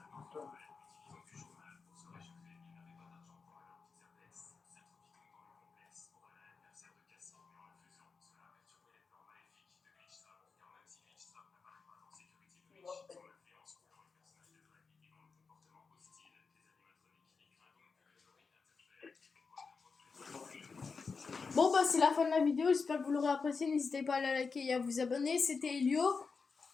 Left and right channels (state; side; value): quieter; right; 4.9 dB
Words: Bon c'est la fin de la vidéo, j'espère que vous l'aurez apprécié, n'hésitez pas à la liker et à vous abonner, c'était Elio.